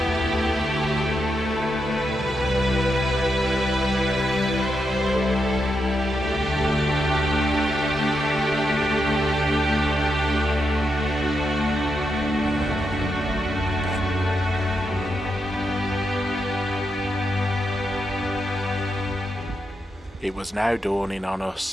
It was now dawning on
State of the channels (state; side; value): normal; both; correlation 0.85